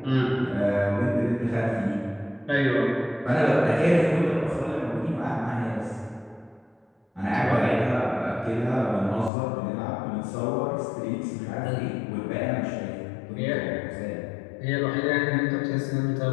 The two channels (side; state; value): right; drops out; at 9.3 s